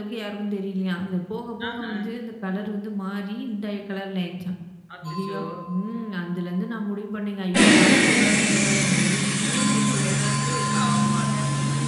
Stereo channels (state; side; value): identical; both; correlation 1.00